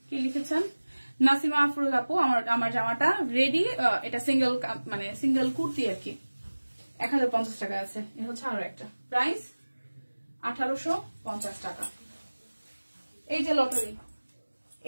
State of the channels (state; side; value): inverted; both; correlation -1.00